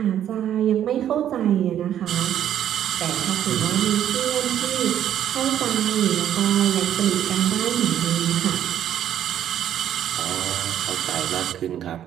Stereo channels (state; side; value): quieter; left; 10.6 dB